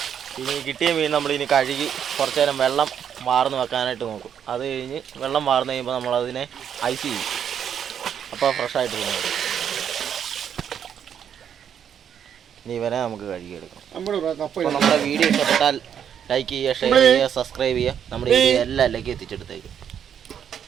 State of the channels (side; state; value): left; quieter; 8.6 dB